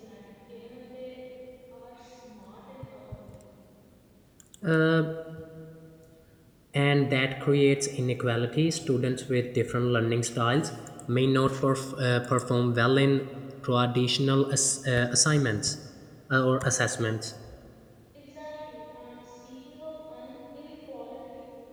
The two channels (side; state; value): both; identical; correlation 1.00